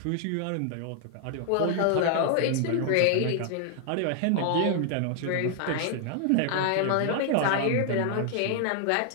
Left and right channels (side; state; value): both; different; correlation 0.00